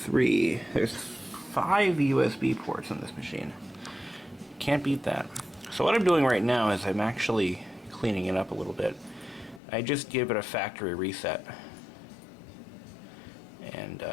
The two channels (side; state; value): right; drops out; at 9.6 s